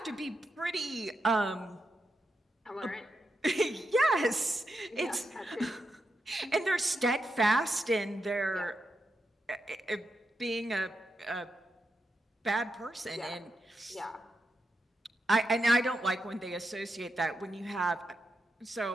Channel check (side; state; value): both; normal; correlation 0.86